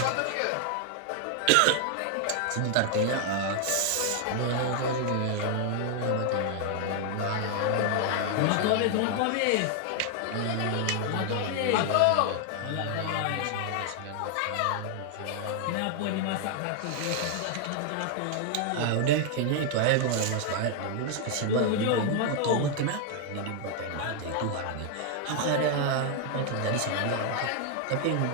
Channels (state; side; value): different; both; correlation 0.00